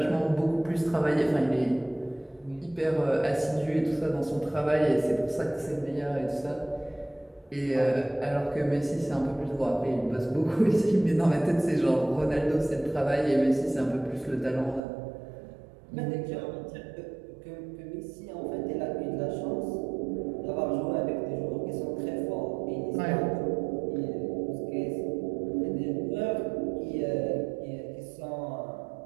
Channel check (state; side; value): drops out; left; at 14.8 s